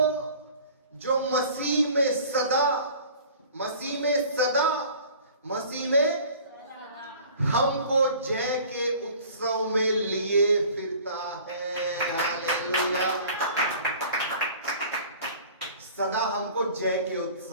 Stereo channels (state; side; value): inverted; both; correlation -0.46